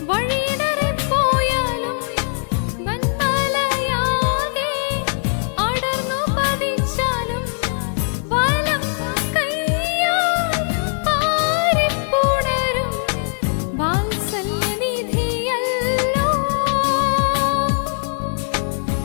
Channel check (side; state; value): right; silent; 60 dB below the other